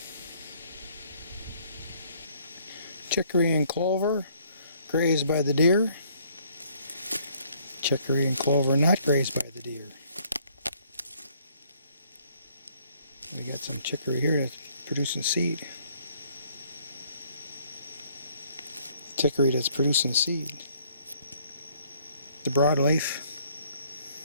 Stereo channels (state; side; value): inverted; both; correlation -0.63